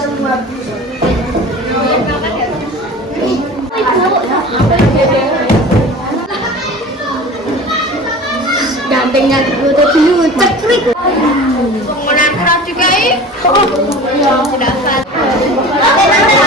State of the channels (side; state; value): both; normal; correlation 0.38